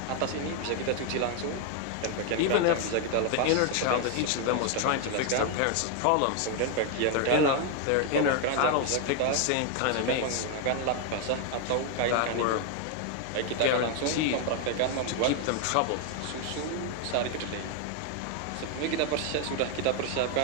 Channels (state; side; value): different; both; correlation 0.01